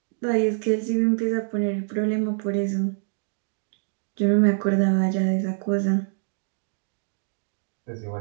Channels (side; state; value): left; silent; digital silence